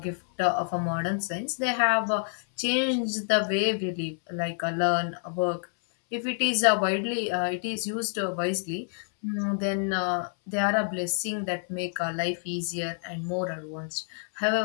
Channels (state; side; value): silent; right; 59 dB below the other